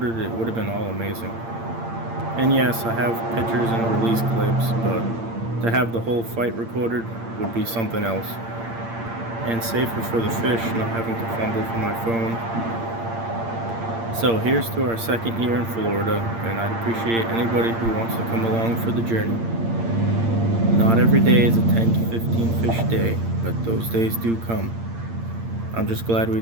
it would have been all amazing. And yes, I have pictures and release clips, but to have the whole fight recorded would be something else. And safer for the fish, not having to fumble for my phone. So here's to our second year in Florida, and I'd appreciate anybody who wants to come along for the journey. Not every day is a 10 to 15 fish day, but those days do come. I'm just glad we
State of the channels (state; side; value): late; left; 8.7 ms